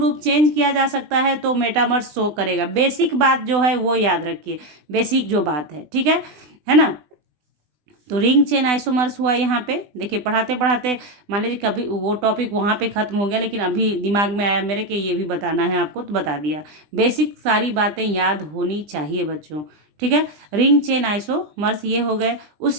चेंज किया जा सकता है तो मेटामर्स शो करेगा। बेसिक बात जो है वो याद रखिए, बेसिक जो बात है। ठीक है ना। तो रिंग चेन आइसोमर्स हुआ यहाँ पे। देखिए पढ़ाते पढ़ाते मान लीजिए कभी वो टॉपिक वहाँ पे ख़त्म हो गया, लेकिन अभी दिमाग में आया मेरे कि ये भी बताना है आपको, तो बता दिया। बेसिक सारी बातें याद होनी चाहिए बच्चों। ठीक है, रिंग चेन आइसोमर्स ये हो गए।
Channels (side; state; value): left; late; 20 ms